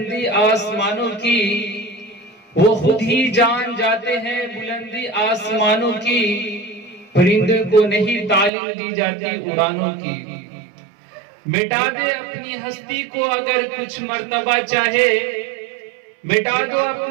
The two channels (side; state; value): left; drops out; at 8.5 s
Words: آسمانوں کی، وہ خود ہی جان جاتے ہیں بلندی آسمانوں کی، پرندے کو نہیں تعلیم دی جاتی اڑانوں کی۔ مٹا دے اپنی ہستی کو اگر کچھ مرتبہ چاہے، مٹا دو